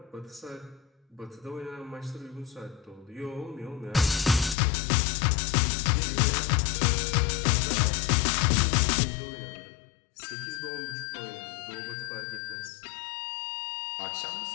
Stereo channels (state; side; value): drops out; right; at 4.5 s